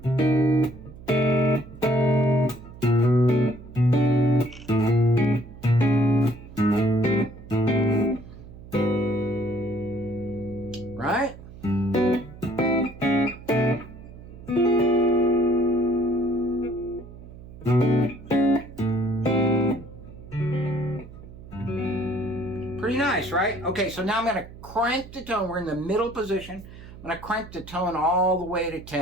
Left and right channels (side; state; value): right; noise; hum, 17 dB below the sound